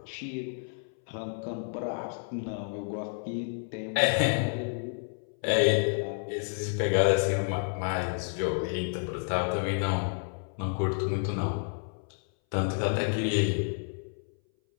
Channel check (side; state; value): right; silent; 58 dB below the other